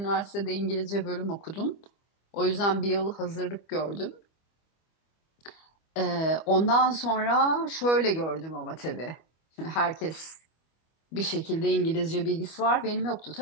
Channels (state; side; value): late; right; 25 ms